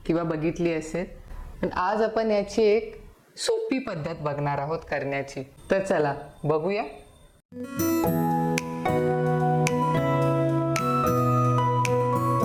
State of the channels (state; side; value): identical; both; correlation 1.00